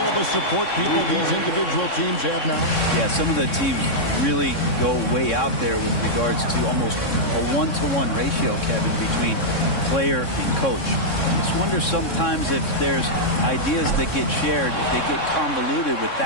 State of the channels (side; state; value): right; late; 3.6 ms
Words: the support people these individual teams have now? Yeah, some of the teams really go way out there with regards to almost a 1-to-1 ratio, Kevin, between player and coach. I just wonder sometimes if there's ideas that get shared, if they get convoluted with